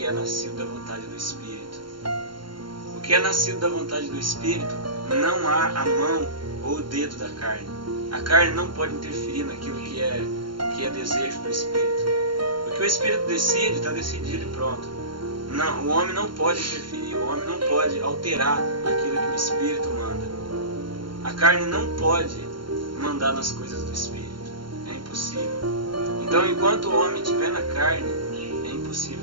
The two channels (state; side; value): late; left; 0.72 ms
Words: é nascido da vontade do Espírito. O que é nascido da vontade do Espírito, não há a mão ou o dedo da carne. A carne não pode interferir naquilo que é desejo do Espírito. O que o Espírito decide, está decidido e pronto. Não, o homem não pode interferir, o homem não pode alterar aquilo que o Espírito manda. A carne não pode mandar nas coisas do Espírito. É impossível. Então, enquanto o homem estiver na carne, é impossível